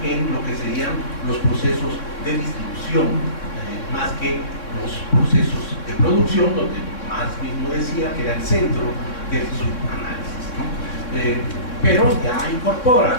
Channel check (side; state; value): right; late; 3.6 ms